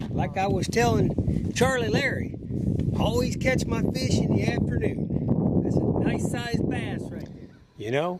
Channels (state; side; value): identical; both; correlation 1.00